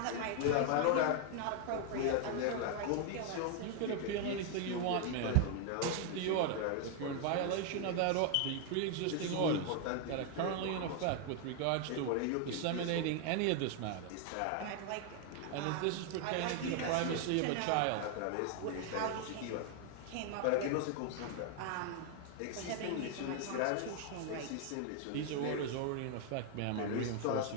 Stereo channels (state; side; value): different; both; correlation 0.00